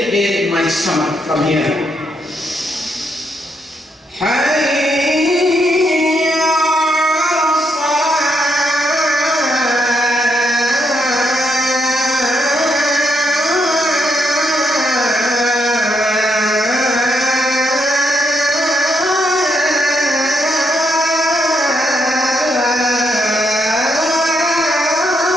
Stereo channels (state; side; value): normal; both; correlation 0.77